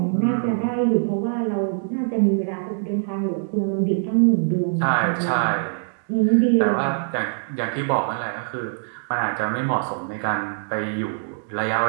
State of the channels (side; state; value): left; silent; digital silence